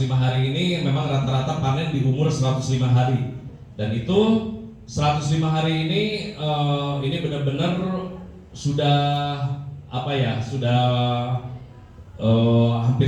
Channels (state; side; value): identical; both; correlation 1.00